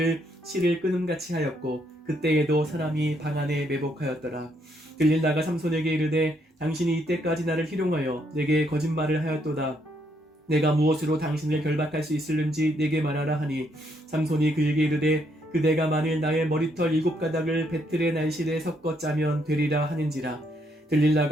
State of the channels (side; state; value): both; normal; correlation 0.73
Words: 실을 끊음같이 하였고 그때에도 사람이 방 안에 매복하였더라. 들릴라가 삼손에게 이르되 당신이 이때까지 나를 희롱하여 내게 거짓말을 하였도다. 내가 무엇으로 당신을 결박할 수 있을는지 내게 말하라 하니 삼손이 그에게 이르되 그대가 만일 나의 머리털 7가닥을 배틀의 날실에 섞어 짜면 되리라 하는지라.